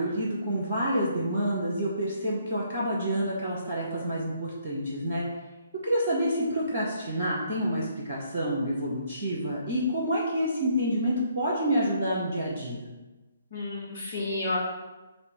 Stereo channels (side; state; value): both; inverted; correlation -0.67